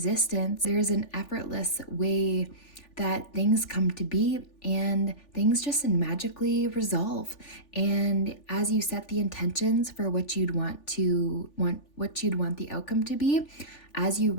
there's an effortless way that things come to be and things just magically resolve. And as you set the intentions for what you'd want the outcome to be, as you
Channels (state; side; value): late; right; 3.4 ms